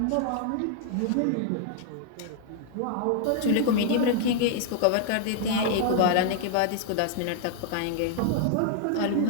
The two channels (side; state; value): both; different; correlation 0.00